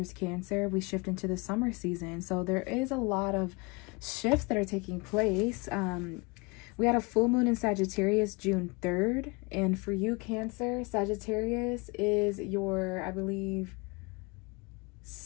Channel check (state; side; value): quieter; right; 28.0 dB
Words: Cancer, we shift into the summer season. So there is a lot of shifts that are taking place. We had a full moon in Sagittarius June 3rd. And for you, Cancer, Sagittarius is your, I believe,